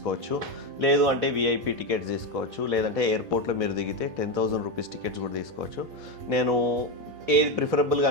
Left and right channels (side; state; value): left; late; 8.9 ms